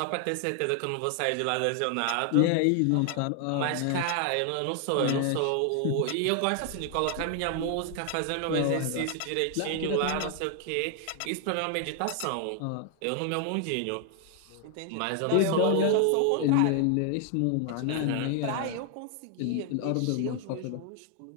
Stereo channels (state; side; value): different; both; correlation 0.00